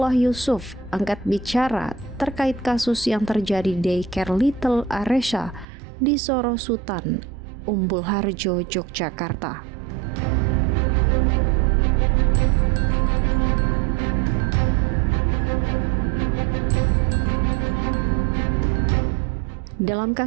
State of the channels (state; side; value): drops out; left; at 5.7 s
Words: Yusuf angkat bicara terkait kasus yang terjadi di daycare Little Aresha di Sorosutan, Umbul Harjo, Yogyakarta. Dalam